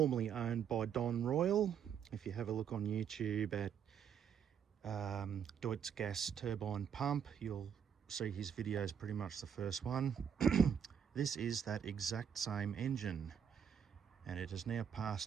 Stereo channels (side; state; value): left; quieter; 8.0 dB